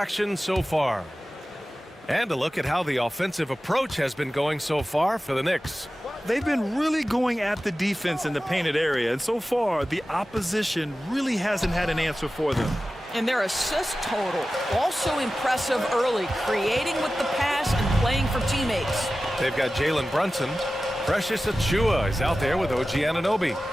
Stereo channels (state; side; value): normal; both; correlation 0.95